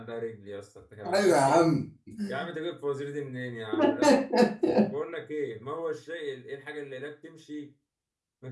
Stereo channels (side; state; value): both; identical; correlation 1.00